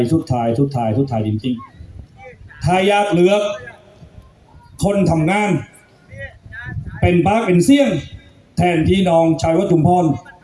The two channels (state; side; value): identical; both; correlation 1.00